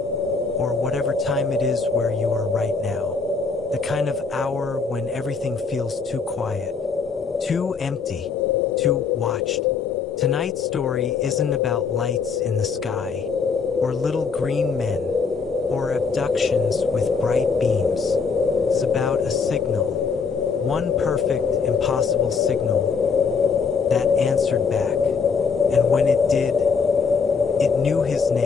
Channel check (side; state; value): right; quieter; 5.3 dB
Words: whatever time it is where you are right now. The kind of hour when everything feels too quiet, too empty, too watched. Tonight's story isn't about lights in the sky, or little green men, or abductions with bright beams. It's about a signal, one perfect, impossible signal that answered back. And when it did, it knew his